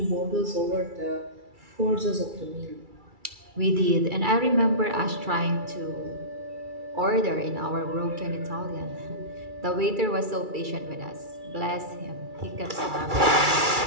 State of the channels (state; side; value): late; left; 2.3 ms